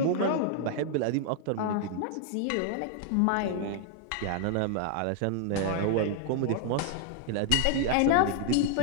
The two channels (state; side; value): different; both; correlation 0.00